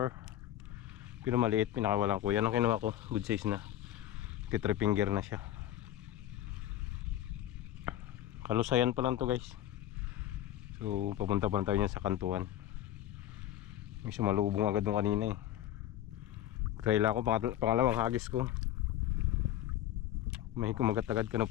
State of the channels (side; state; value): right; quieter; 12.5 dB